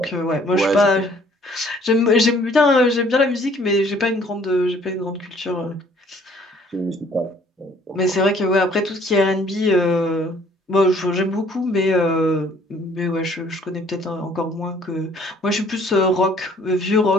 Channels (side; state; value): both; normal; correlation 0.59